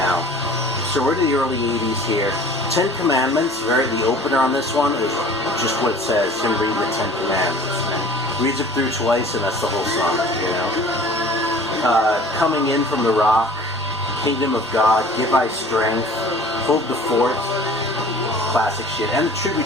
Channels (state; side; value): noise; left; hum, 27 dB below the sound